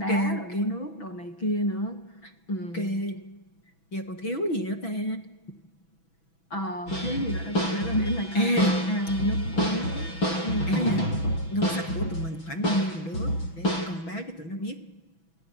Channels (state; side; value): late; right; 6.1 ms